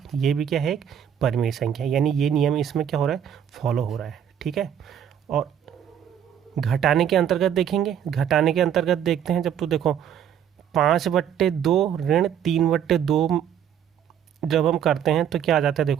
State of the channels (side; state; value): left; quieter; 9.1 dB